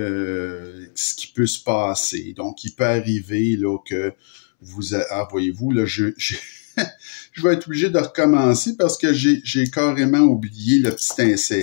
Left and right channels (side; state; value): right; silent; 66 dB below the other